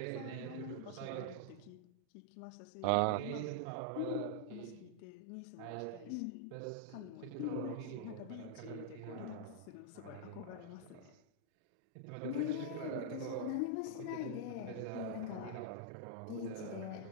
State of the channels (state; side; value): different; both; correlation -0.01